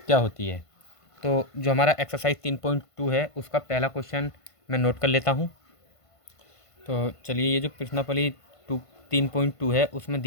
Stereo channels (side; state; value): right; late; 1.5 ms